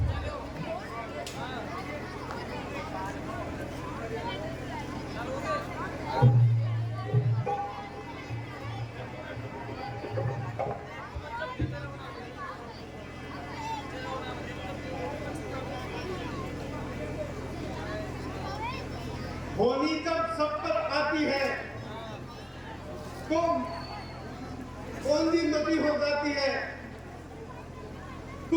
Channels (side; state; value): both; identical; correlation 1.00